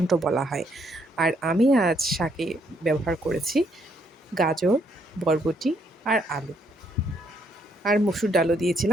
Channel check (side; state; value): both; normal; correlation 0.71